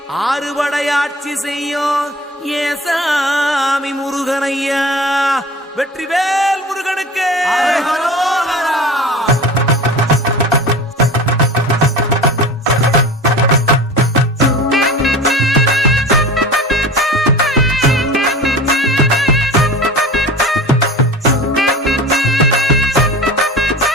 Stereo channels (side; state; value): both; normal; correlation 0.36